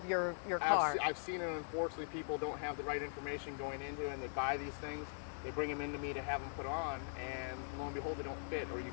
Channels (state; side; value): silent; right; digital silence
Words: your car. I've seen it. Unfortunately, people don't have the right information going into it, and they buy these things. They bring them into me to have them put on, and lo and behold, they don't fit, or you